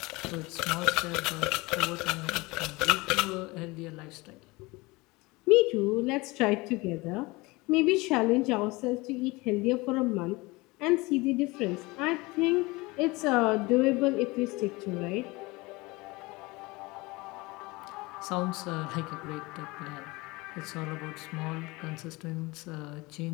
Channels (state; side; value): quieter; right; 23.3 dB